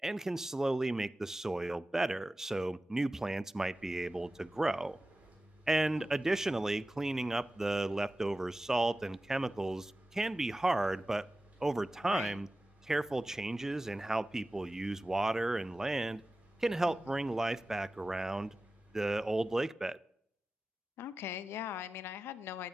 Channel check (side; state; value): both; normal; correlation 0.95